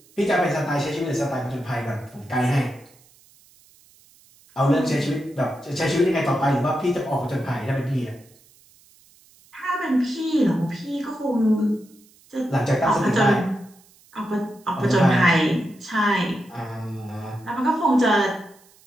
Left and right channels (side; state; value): right; noise; hiss, 29 dB below the sound